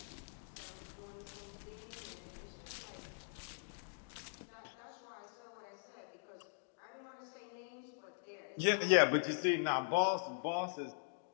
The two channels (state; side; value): silent; right; digital silence